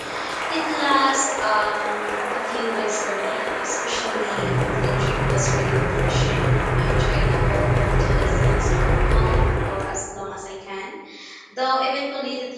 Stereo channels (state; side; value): identical; both; correlation 1.00